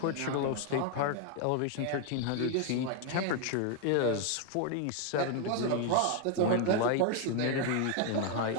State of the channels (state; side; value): different; both; correlation 0.01